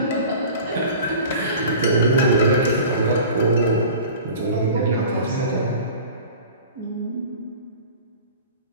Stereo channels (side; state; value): both; inverted; correlation -0.40